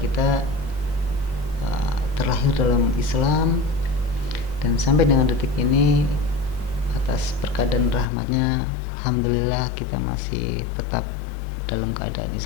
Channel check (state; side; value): drops out; right; at 8.1 s